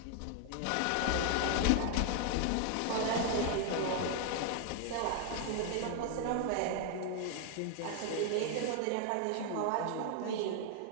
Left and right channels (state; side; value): different; both; correlation 0.00